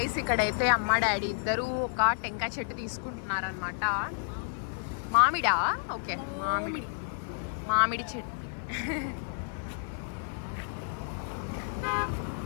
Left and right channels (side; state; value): right; silent; digital silence